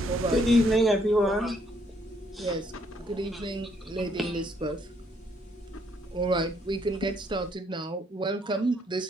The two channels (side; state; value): both; normal; correlation 0.69